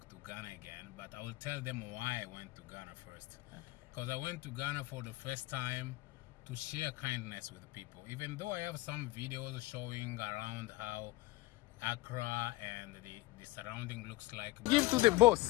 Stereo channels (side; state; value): right; quieter; 19.2 dB